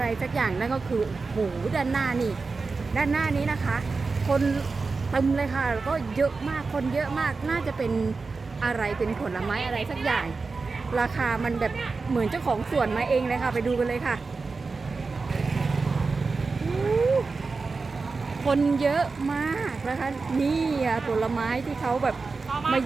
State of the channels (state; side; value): quieter; left; 4.2 dB